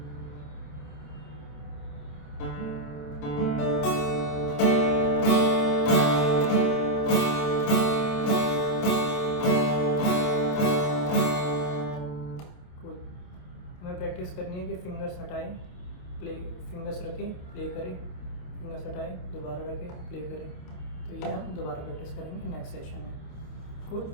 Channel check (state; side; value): late; right; 28 ms